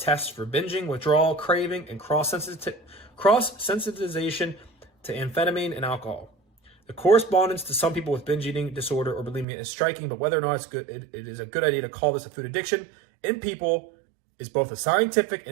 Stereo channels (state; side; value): drops out; left; at 9.5 s